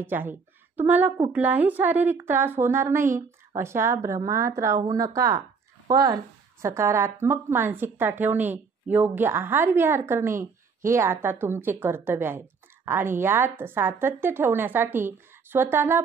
आहे. तुम्हाला कुठलाही शारीरिक त्रास होणार नाही अशा भ्रमात राहू नका. पण सकारात्मक मानसिकता ठेवणे, योग्य आहार विहार करणे हे आता तुमचे कर्तव्य आहे. आणि यात सातत्य ठेवण्यासाठी स्वतःला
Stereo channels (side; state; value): left; quieter; 5.2 dB